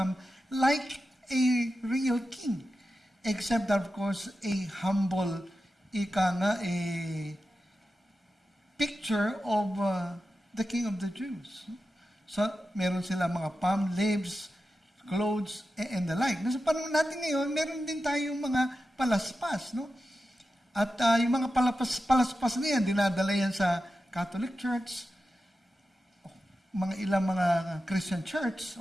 like a real king. Except that, of course, a humble, a picture of the King of the Jews. So, meron sila mga palm leaves, clothes, and the like. Sa panahon natin ngayon, meron din tayong mga palaspas, no? At yung mga palaspas na yan, dinadala yan sa Catholic Church, ilang mga Christian church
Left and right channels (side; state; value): both; normal; correlation 0.92